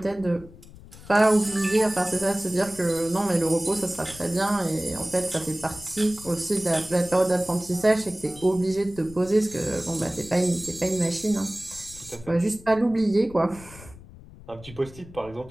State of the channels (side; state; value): left; noise; rumble, 19 dB below the sound